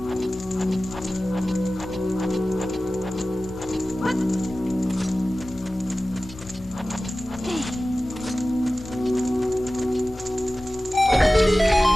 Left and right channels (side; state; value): both; normal; correlation 0.96